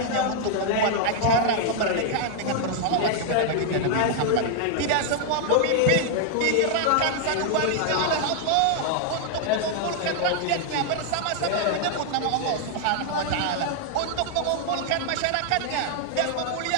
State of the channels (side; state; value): both; different; correlation 0.00